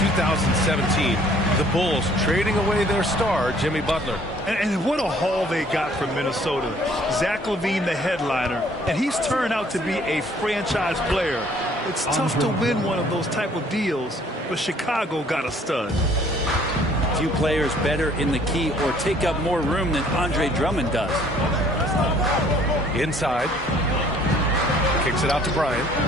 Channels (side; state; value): both; normal; correlation 0.58